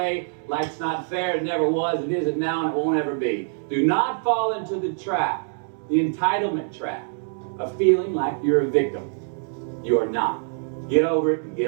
Life's not fair. It never was. It isn't now, and it won't ever be. Do not fall into the trap, the entitlement trap, of feeling like you're a victim. You are not. Get over it and get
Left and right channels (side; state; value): left; silent; digital silence